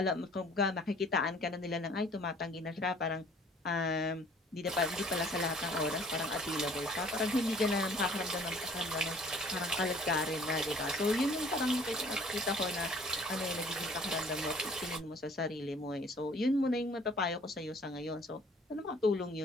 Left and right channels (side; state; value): both; normal; correlation 0.55